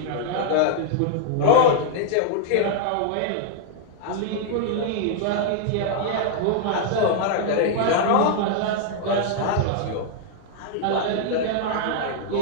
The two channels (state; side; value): different; both; correlation -0.01